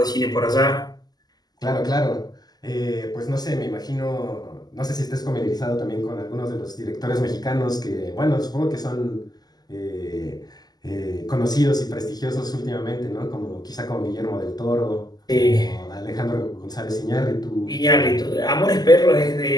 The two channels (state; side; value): late; right; 0.20 ms